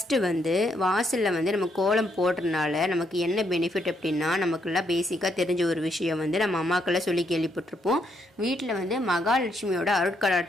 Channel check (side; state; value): both; normal; correlation 0.75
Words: வந்து வாசலில் வந்து நம்ம கோலம் போடுறதுனால நமக்கு என்ன பெனிஃபிட் அப்படின்னா, நமக்குலாம் பேசிக்காக தெரிஞ்ச ஒரு விஷயம் வந்து நம்ம அம்மாக்கெல்லாம் சொல்லி கேள்விப்பட்டிருப்போம். வீட்டில் வந்து மகாலட்சுமியோட